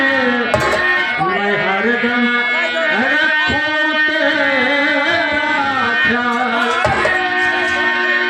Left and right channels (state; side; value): identical; both; correlation 1.00